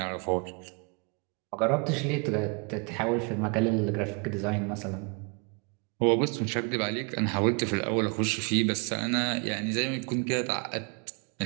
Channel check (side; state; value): left; quieter; 35.2 dB